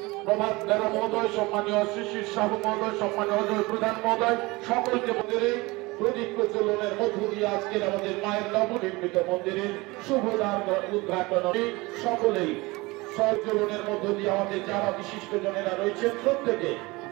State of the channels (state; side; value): quieter; left; 23.0 dB